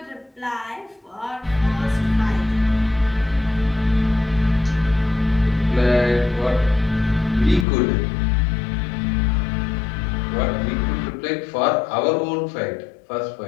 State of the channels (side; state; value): right; drops out; at 7.7 s